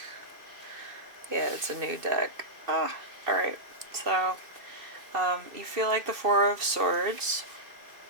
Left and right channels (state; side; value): late; left; 2.7 ms